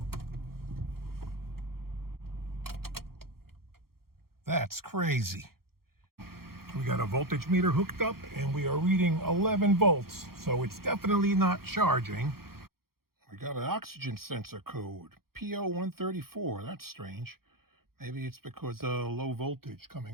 That's crazy. We got a voltage meter hooked up and we are reading 11 volts. So it's definitely not charging. We got an oxygen sensor code, PO134. That's strange. Maybe it's because of low voltage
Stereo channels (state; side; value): late; left; 0.94 ms